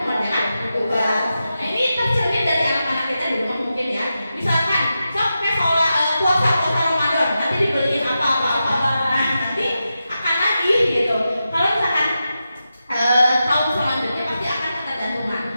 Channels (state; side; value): inverted; both; correlation -0.90